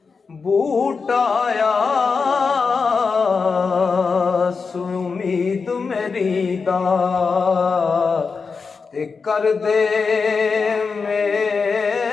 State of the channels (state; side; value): quieter; right; 5.0 dB